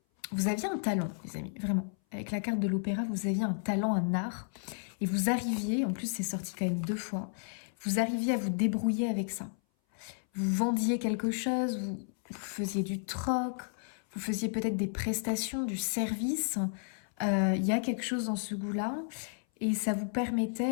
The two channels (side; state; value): right; silent; 56 dB below the other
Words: Vous aviez un talent, les amis, vraiment. Avec la carte de l'opéra, vous aviez un talent, un art. Et vous arriviez, en plus c'est sorti quand même 2 fois, vous arriviez à vous débrouiller avec ça. Vous vendiez quelque chose, vous faisiez du troc, vous faisiez peut-être des prestations, du service. Il y a quelque chose dans ce goût-là. Et ça vous